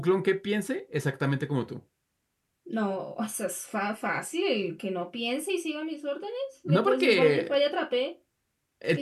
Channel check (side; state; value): both; identical; correlation 1.00